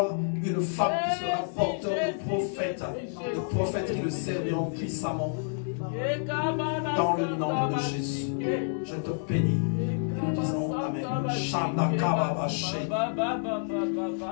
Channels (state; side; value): silent; right; digital silence